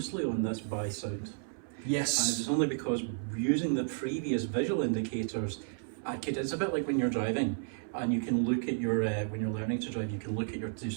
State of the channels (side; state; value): left; silent; 56 dB below the other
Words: on this by sound. Yes. And it was only because using the previous visual indicators, it's a bit like when you're driving and you can look at your, when you're learning to drive, you can look at your